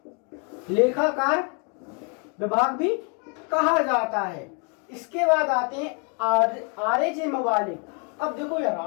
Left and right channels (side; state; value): right; quieter; 37.0 dB